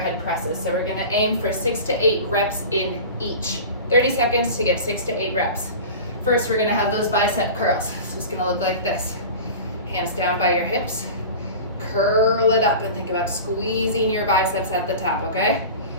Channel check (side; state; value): both; inverted; correlation -0.34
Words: presses. So we're gonna aim for 6 to 8 reps in each. 30 seconds to get 6 to 8 reps. First, we're gonna have those bicep curls. So it's gonna look like this. Hands down by your hips. Curl it up and think about squeezing your biceps at the top, okay?